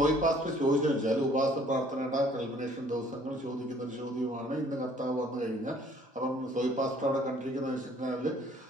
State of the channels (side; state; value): both; normal; correlation 0.58